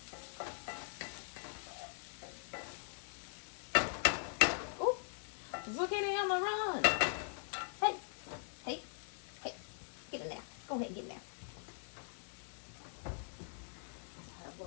Oh, zucchini on the run. Hey, hey, hey, get in there. Go ahead, get in there. I have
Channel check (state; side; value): silent; right; digital silence